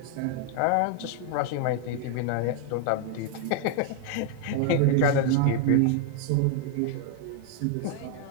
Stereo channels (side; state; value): both; different; correlation 0.00